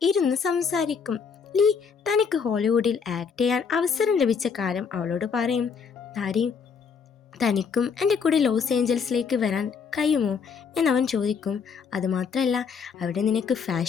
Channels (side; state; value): right; quieter; 6.1 dB